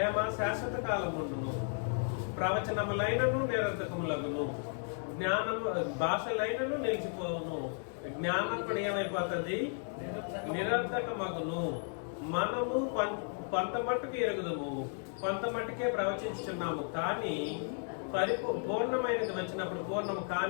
శాశ్వత కాలముండును, ప్రవచనములైనను నిరర్థకములగును, జ్ఞానము భాషలైనను నిలిచిపోవును, జ్ఞానం కూడా ఏమైపోతుంది? నిరర్థకమగును. మనము కొంత మట్టుకు ఎరుగుదము, కొంత మట్టుకే ప్రవచించుచున్నాము, కానీ పూర్ణమైనది వచ్చినప్పుడు పూర్ణము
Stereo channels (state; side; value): silent; right; 55 dB below the other